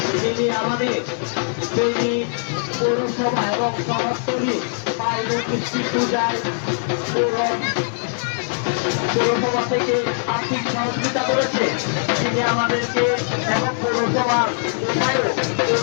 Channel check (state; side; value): silent; right; digital silence